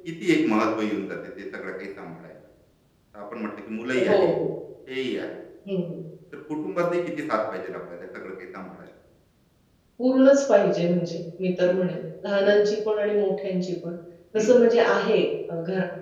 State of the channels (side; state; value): both; identical; correlation 1.00